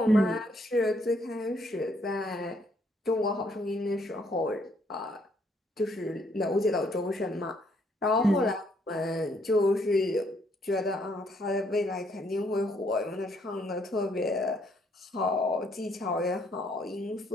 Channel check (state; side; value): normal; both; correlation 0.69